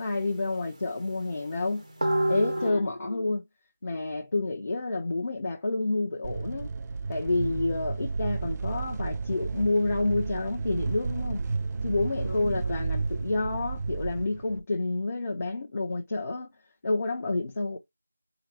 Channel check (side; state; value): both; inverted; correlation -0.92